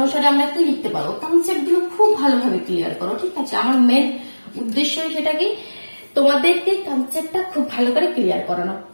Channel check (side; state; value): both; inverted; correlation -1.00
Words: আমরা কি লিখতে পারবো, কনসেপ্ট গুলো খুব ভালোভাবে ক্লিয়ার করো, ঠিক আছে। আমার মেন উদ্দেশ্য সেটা কি, তোমাদেরকে কনসেপ্টটা খুব ভালো করে ক্লিয়ার করানো।